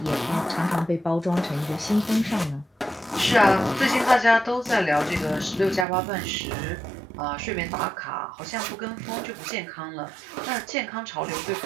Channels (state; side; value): drops out; left; at 5.9 s